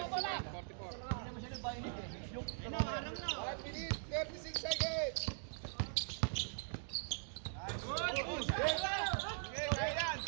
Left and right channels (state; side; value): silent; left; digital silence